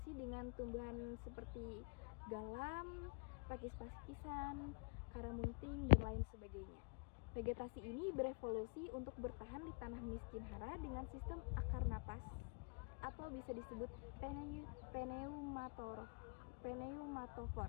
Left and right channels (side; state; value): right; quieter; 34.2 dB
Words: dengan tumbuhan seperti galam, pakis-pakisan, karamunting, dan lain sebagainya. Vegetasi ini berevolusi untuk bertahan di tanah miskin hara dengan sistem akar napas atau bisa disebut pneumatofor.